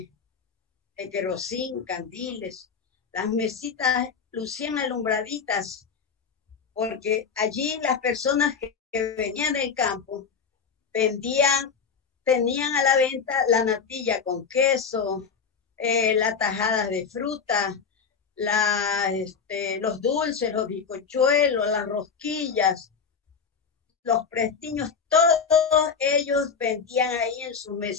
de querosín, candiles. Las mesitas lucían alumbraditas porque allí las personas que venían del campo tenían a la venta la natilla con queso, las tajadas de fruta, los dulces, los bizcochuelos, las rosquillas, los prestiños, todos ellos vendían ahí en sus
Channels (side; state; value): right; quieter; 6.0 dB